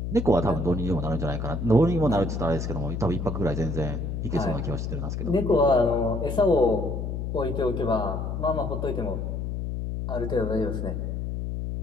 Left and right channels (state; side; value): noise; left; hum, 3 dB below the sound